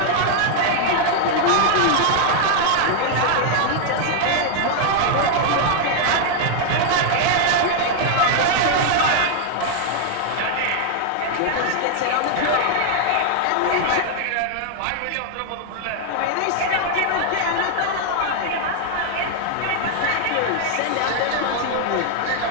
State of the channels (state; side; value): different; both; correlation 0.00